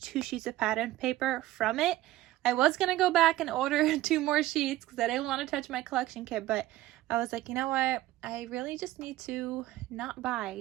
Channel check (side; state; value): left; quieter; 15.9 dB